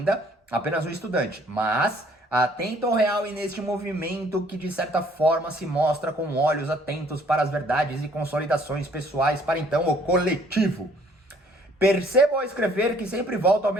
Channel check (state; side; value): normal; both; correlation 0.60